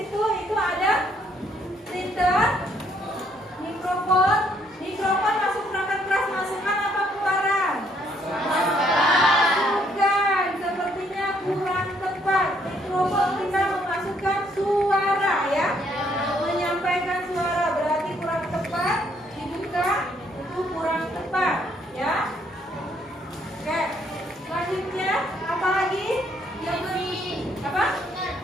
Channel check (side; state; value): both; normal; correlation 0.69